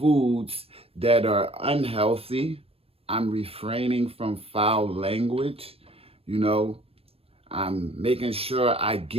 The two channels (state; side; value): late; left; 0.28 ms